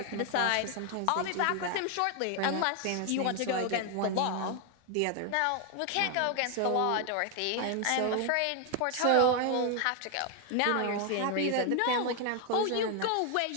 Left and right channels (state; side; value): different; both; correlation 0.00